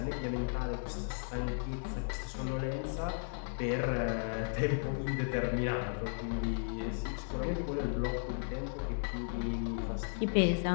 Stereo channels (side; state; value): right; silent; 54 dB below the other